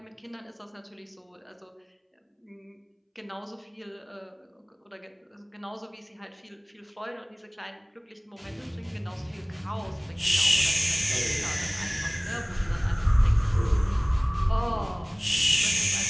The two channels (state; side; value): identical; both; correlation 1.00